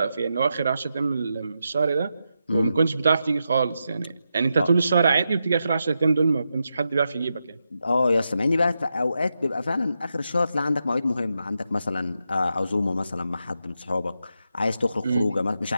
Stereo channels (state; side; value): inverted; both; correlation -0.86